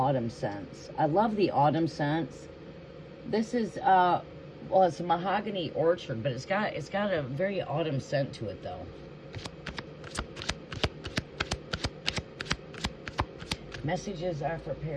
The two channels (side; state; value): both; identical; correlation 1.00